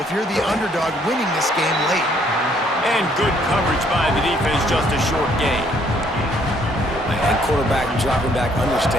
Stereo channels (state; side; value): normal; both; correlation 0.65